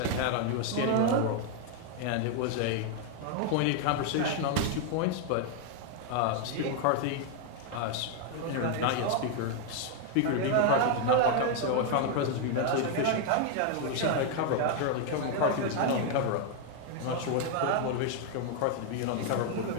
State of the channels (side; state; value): both; different; correlation 0.00